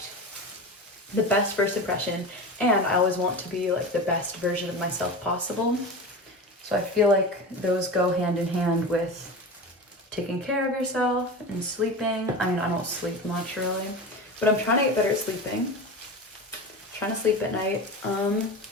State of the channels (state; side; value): normal; both; correlation 0.28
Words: the best first impression, and I always want to be like the best version of myself possible. So I feel like those go hand in hand with taking care of yourself and sleeping. I mean, I don't sleep much really, but I'm trying to get better at sleeping. I'm trying to sleep at night,